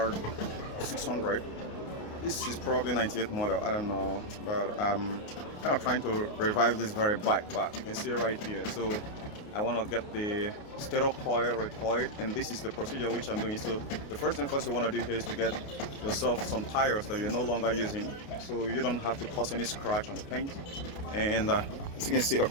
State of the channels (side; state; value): right; late; 29 ms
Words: This is probably 98 model. I don't know, but I'm kind of trying to revive this very bike back. You can see it right here. So I want to get the startor coil recoiled, and this is the procedure which I'm doing. So the first thing first you want to do here is to get yourself some tires that you're no longer using, so you don't have to cause any scratch on the paint. And as you can see,